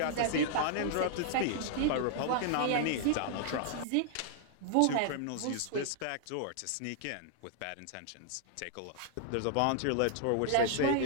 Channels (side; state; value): both; different; correlation -0.01